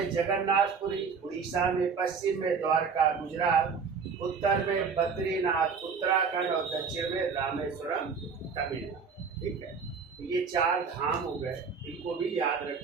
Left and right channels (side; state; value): left; quieter; 5.6 dB